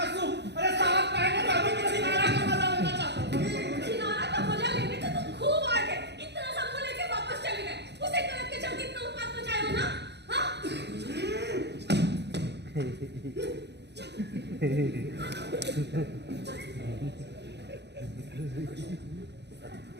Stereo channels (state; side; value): late; left; 0.50 ms